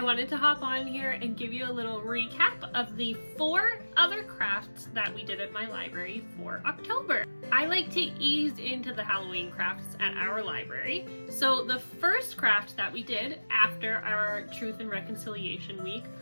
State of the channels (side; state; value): both; inverted; correlation -1.00